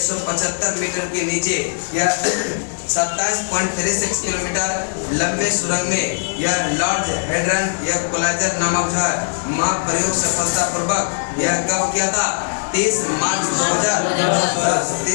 मीटर के नीचे यह 27.36 किलोमीटर लंबे सुरंग में यह लॉर्ड हेड्रन यह कोलाइजर नामक जो है महाप्रयोग सफलतापूर्वक यह कब किया था, 30 मार्च 2010,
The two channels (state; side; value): silent; right; digital silence